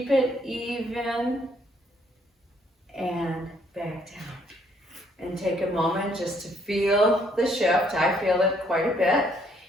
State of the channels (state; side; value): normal; both; correlation 0.67